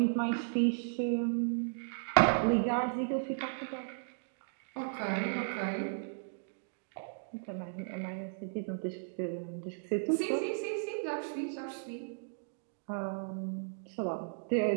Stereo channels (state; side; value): silent; left; digital silence